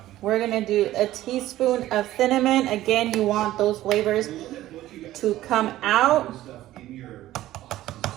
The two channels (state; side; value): quieter; left; 14.8 dB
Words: We're gonna do a teaspoon of cinnamon. Again, you want those flavors to come out.